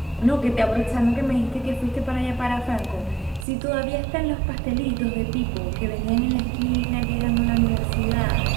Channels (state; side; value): drops out; left; at 3.5 s